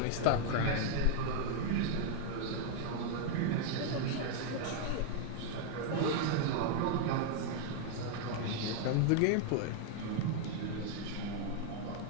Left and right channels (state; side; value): different; both; correlation 0.00